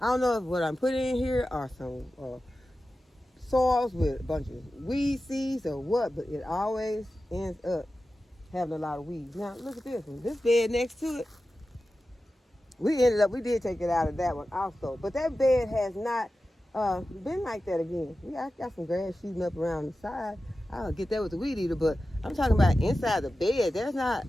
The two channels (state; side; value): normal; both; correlation 0.93